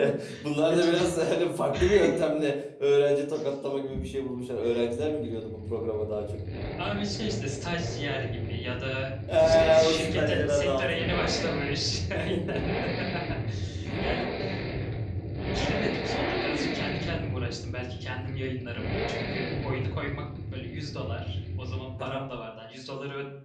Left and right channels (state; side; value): identical; both; correlation 1.00